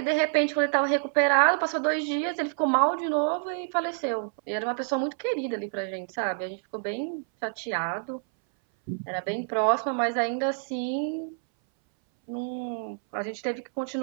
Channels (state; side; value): silent; left; 60 dB below the other